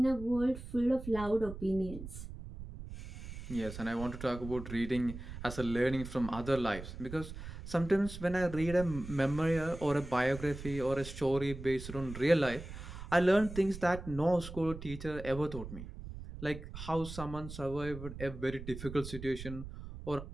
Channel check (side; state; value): right; noise; rumble, 11 dB below the sound